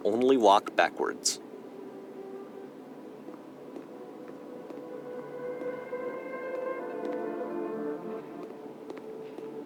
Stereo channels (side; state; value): both; identical; correlation 1.00